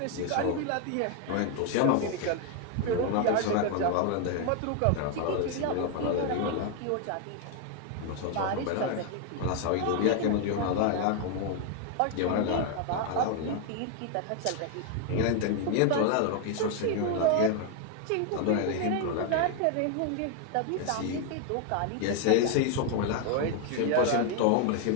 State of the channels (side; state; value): both; different; correlation 0.01